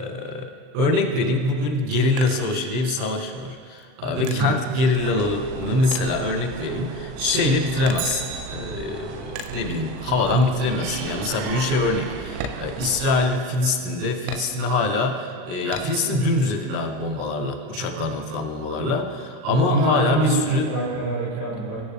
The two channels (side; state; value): left; late; 39 ms